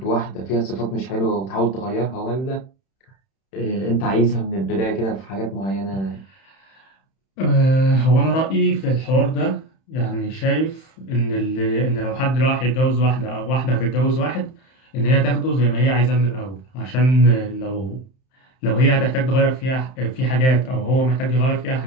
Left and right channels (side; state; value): right; late; 31 ms